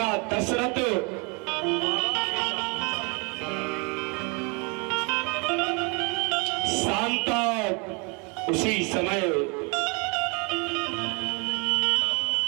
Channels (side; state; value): left; quieter; 31.7 dB